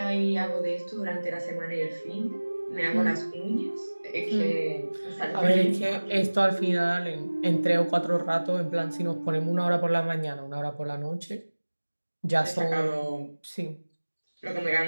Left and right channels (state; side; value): inverted; both; correlation -1.00